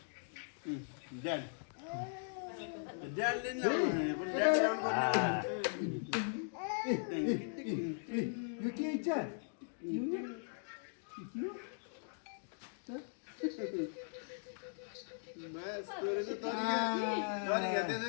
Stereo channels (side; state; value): right; silent; digital silence